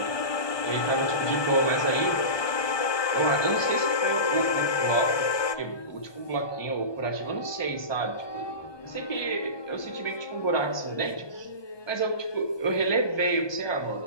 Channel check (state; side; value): late; right; 1.2 ms